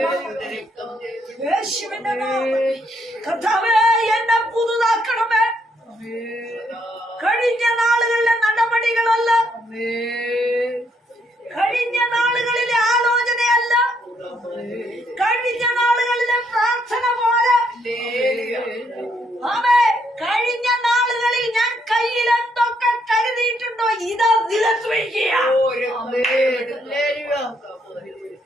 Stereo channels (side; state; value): both; normal; correlation 0.73